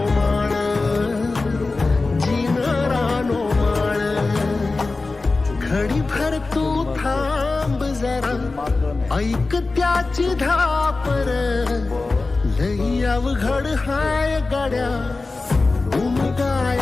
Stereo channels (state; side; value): quieter; right; 3.6 dB